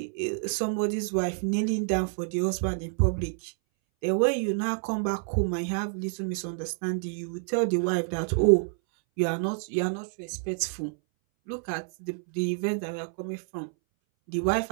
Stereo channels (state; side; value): silent; left; 59 dB below the other